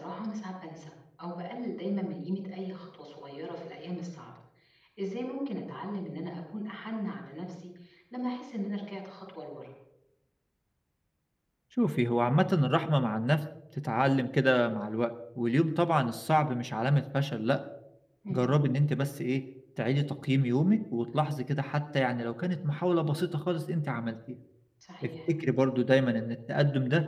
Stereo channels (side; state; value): both; identical; correlation 1.00